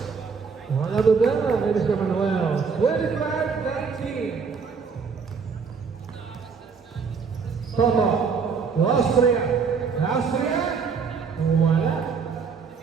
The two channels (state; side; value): quieter; left; 5.6 dB